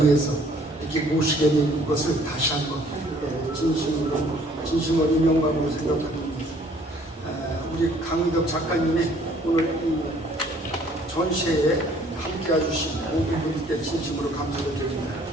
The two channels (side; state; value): both; normal; correlation 0.59